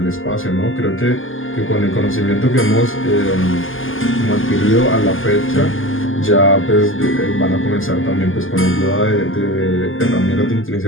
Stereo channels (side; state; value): right; late; 0.58 ms